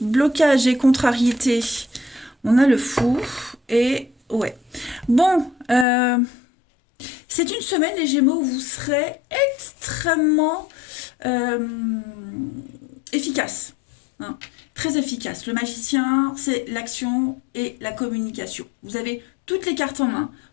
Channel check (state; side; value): drops out; right; at 5.9 s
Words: Blocage et contrariété. On a le fou et... Ouais. Bon, c'est une semaine, les Gémeaux, où vous serez extrêmement efficace. Hein, très efficace. Le magicien, c'est l'action et la communication. Vous avez toutes les cartes en main